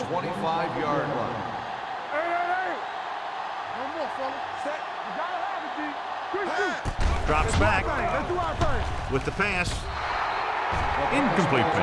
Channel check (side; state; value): both; identical; correlation 1.00